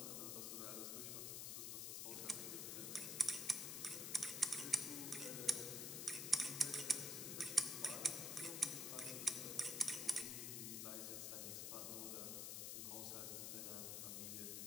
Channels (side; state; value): left; noise; hiss, 2 dB below the sound